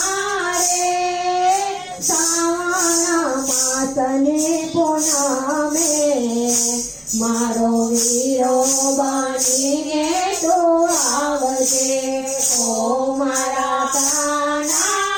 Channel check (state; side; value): identical; both; correlation 1.00